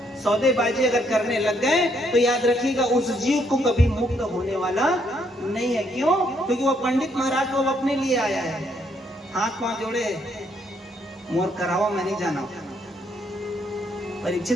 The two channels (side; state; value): both; normal; correlation 0.72